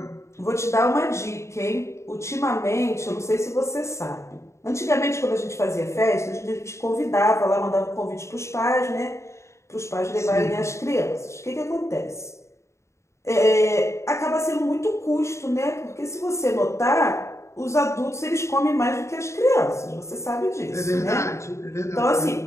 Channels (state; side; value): late; right; 0.14 ms